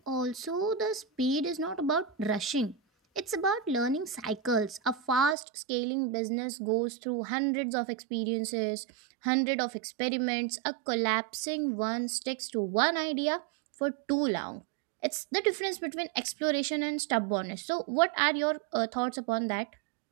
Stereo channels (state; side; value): drops out; left; at 5.4 s